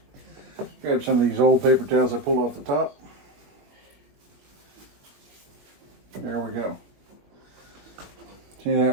Grab some of these old paper towels I pulled off the top. There we go. See, that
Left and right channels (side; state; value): left; late; 20 ms